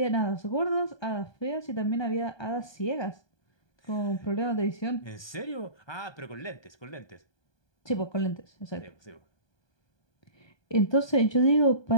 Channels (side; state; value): right; late; 1.2 ms